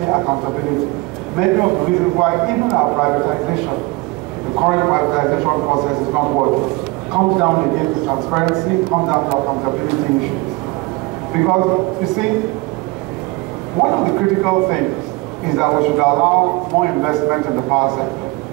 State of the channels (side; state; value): left; quieter; 24.3 dB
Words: accountability. Many of the reasons why even our privatization, the current privatization process is not working, comes down again to transparency, comes down to accountability issues. Because, you see, one of the critical things is that we should allow more investment in the power sector.